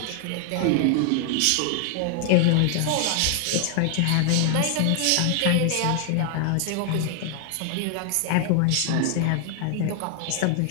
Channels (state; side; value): different; both; correlation 0.00